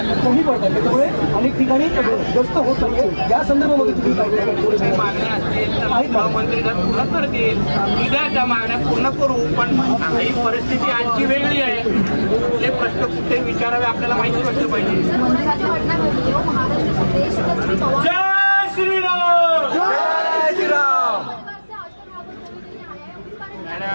कमी पडतात, त्याच्यामुळे अनेक ठिकाणी गस्त होत नाहीये. या संदर्भामध्ये तुम्ही काय मागण्या असतील तर गृहमंत्री जर पूर्ण करतील, उद्या त्या मागण्या पूर्ण करू. पण ही परिस्थिती आजची वेगळी आहे. हे प्रश्न कुठे विचारावे आपल्याला माहिती असलं पाहिजे. जय श्रीराम. जय श्रीराम.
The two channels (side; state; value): both; inverted; correlation -1.00